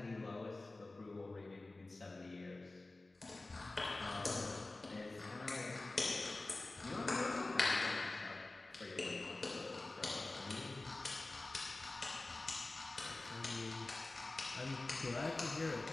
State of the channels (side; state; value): right; quieter; 3.0 dB